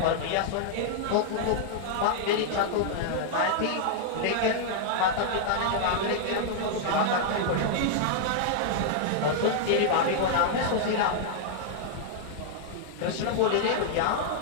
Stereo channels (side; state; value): both; different; correlation -0.01